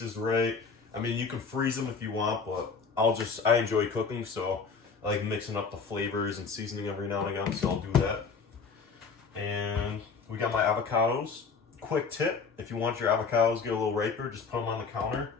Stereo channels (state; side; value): quieter; right; 5.2 dB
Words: as right. I mean, you can freeze them if you want, but I enjoy cooking, so I like mixing up the flavors and seasoning every now and again, so I'll do that. And we got my avocados. Quick tip, if you want your avocados to get a little riper, just put them on the counter.